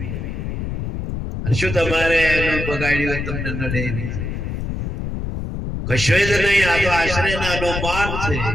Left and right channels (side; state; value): left; noise; rumble, 4 dB below the sound